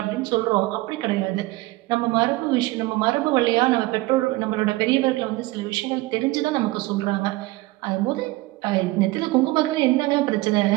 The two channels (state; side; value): quieter; left; 20.2 dB